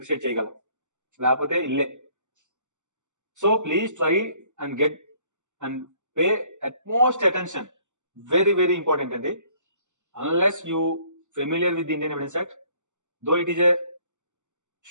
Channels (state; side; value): late; left; 0.84 ms